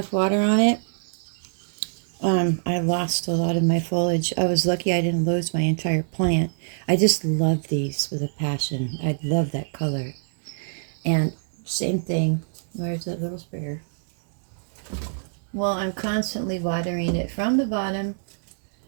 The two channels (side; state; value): left; silent; digital silence